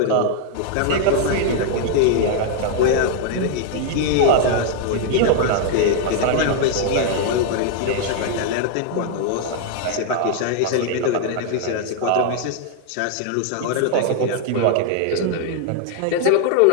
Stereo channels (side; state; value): both; different; correlation 0.00